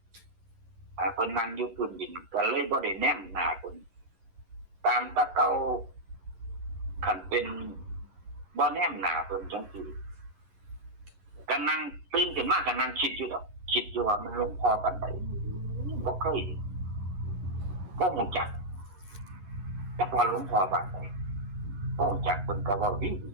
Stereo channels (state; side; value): late; left; 11 ms